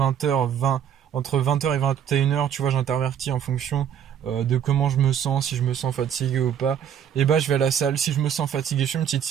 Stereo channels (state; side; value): quieter; left; 9.0 dB